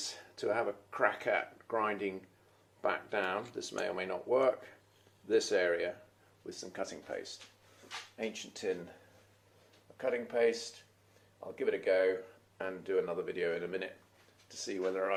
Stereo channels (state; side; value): identical; both; correlation 1.00